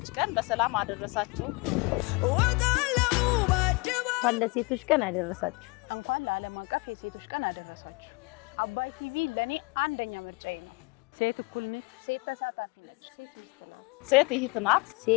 ቀን በሰላም አደረሳችሁ። እንኳን ለሴቶች ቀን አደረሳችሁ። ሴት እህት ናት።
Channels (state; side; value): quieter; right; 27.9 dB